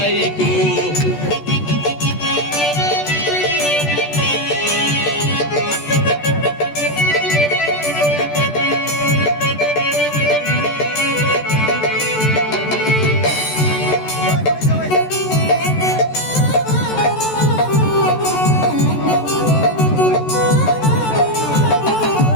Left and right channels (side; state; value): right; late; 14 ms